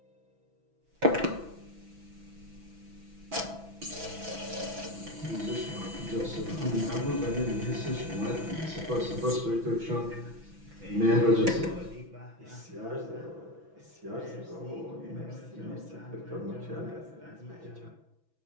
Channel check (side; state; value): left; late; 6.1 ms